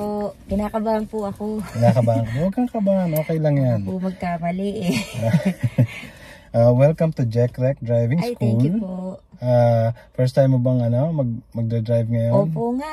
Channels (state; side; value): identical; both; correlation 1.00